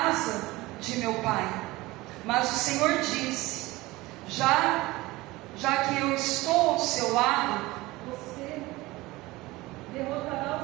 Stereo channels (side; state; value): left; quieter; 20.1 dB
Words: de meu pai. Mas o Senhor disse: já que eu estou ao seu lado, você derrotará